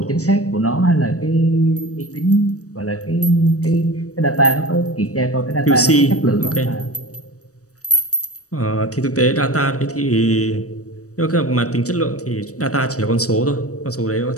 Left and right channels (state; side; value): late; right; 0.66 ms